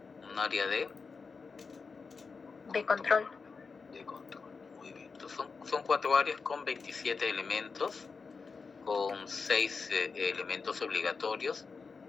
control. De control. Muy bien. Entonces son 4 áreas con 27 elementos, con 6 elementos obligatorios,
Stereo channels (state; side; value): quieter; right; 4.9 dB